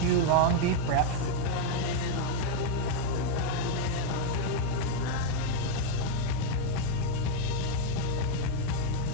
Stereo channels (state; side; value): different; both; correlation 0.00